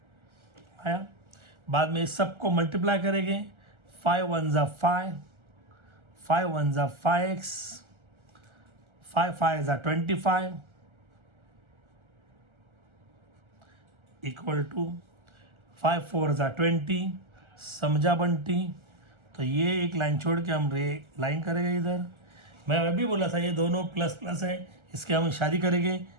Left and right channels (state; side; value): late; left; 1.3 ms